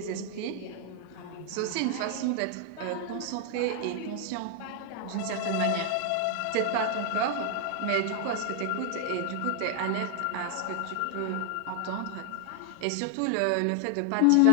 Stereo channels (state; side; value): different; both; correlation 0.00